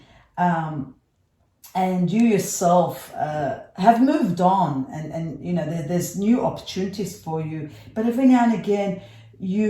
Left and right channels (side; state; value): both; identical; correlation 1.00